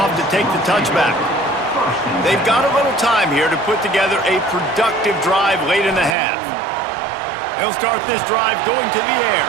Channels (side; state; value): left; drops out; at 6.2 s